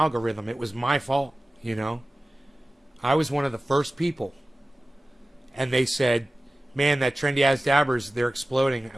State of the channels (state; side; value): normal; both; correlation 0.96